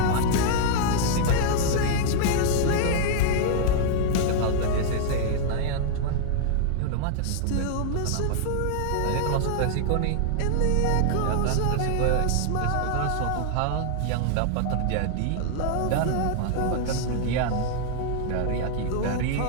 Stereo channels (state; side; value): different; both; correlation -0.01